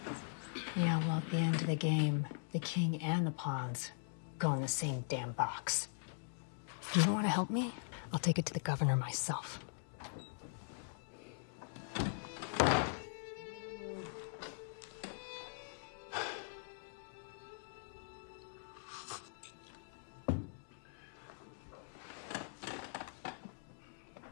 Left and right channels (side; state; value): right; silent; digital silence